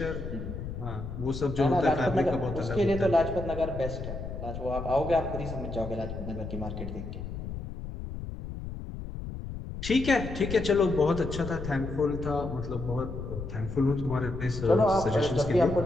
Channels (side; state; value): left; noise; rumble, 8 dB below the sound